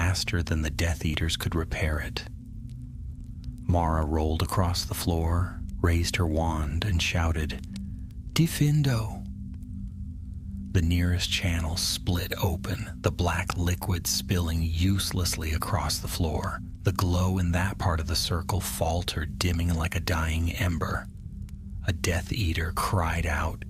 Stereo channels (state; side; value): identical; both; correlation 1.00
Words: than the Death Eaters could repair it. Mara rolled across the floor, raised her wand, and shouted, "Defendo!" The nearest channel split open, the black liquid spilling uselessly across the floor. The glow in that part of the circle faltered, dimming like a dying ember. A Death Eater cried out